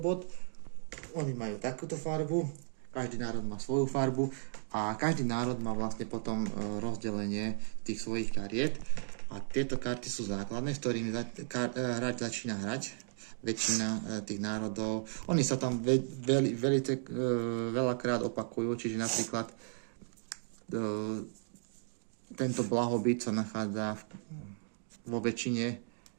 Oni majú takúto farbu. Každý národ má svoju farbu a každý národ má vlastne potom rozdelenie tých svojich kariet. A tieto karty sú základné, s ktorými hráč začína hrať. Väčšina tých národov. Oni sa tam veľakrát opakujú, čiže napríklad tento blahobyt sa nachádza vo väčšine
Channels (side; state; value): left; silent; digital silence